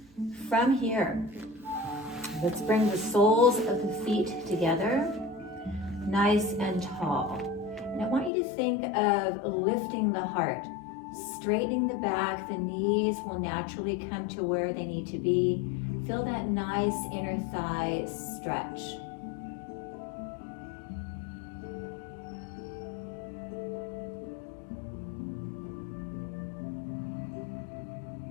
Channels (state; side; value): drops out; right; at 8.3 s